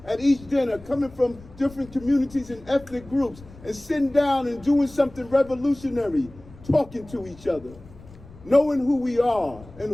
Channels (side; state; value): left; noise; rumble, 20 dB below the sound